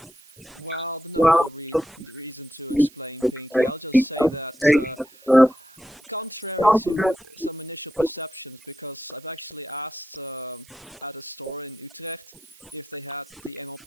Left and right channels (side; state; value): right; noise; hiss, 25 dB below the sound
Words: Well, there's no real reason to explain Pinkie. I'll just say that, contrary to some initial perceptions, because I've actually asked at a store in Utrecht if they had the